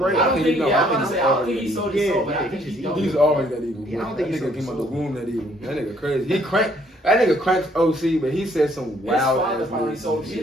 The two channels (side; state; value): both; normal; correlation 0.65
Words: I don't think. No, Yeah, I I'm gonna think say. I don't think he sold his Yeah, soul, but yeah, I think he he just don't. He's always that evil. Yeah, I don't That think he nigga sold came out the his womb that evil. That nigga crazy. That nigga cranks OC, but he said some His wild father ass probably words. sold